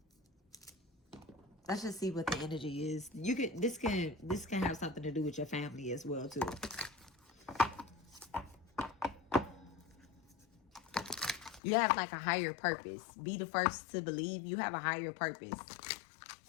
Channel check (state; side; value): drops out; right; at 11.6 s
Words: Let's just see what the energy is. This can have something to do with your family as well too. You have like a higher purpose. Be the first to believe you have a higher purpose.